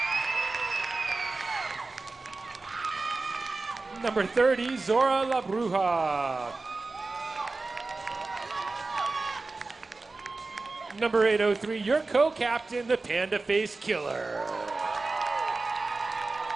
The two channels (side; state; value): left; quieter; 3.6 dB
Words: Number 30, Zora La Bruja. Number 803, your co-captain, the Panda Face Killer.